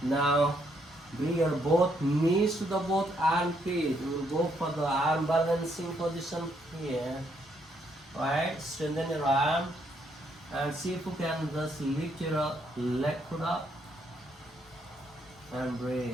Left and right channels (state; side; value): normal; both; correlation 0.73